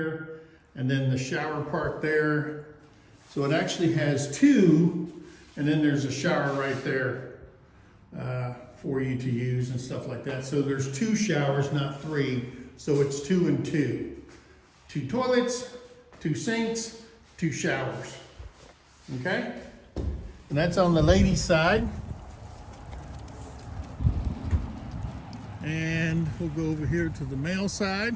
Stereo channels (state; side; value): identical; both; correlation 1.00